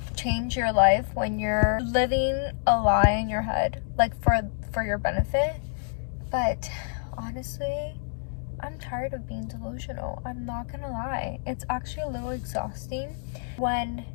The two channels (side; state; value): right; silent; digital silence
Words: change your life when you're living a lie in your head, like for your benefit. But honestly, I'm tired of being delusional. I'm not gonna lie. It's actually a little exhausting when